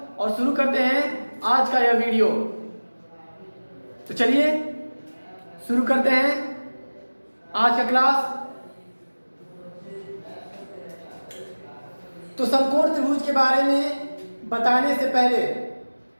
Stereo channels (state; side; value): inverted; both; correlation -1.00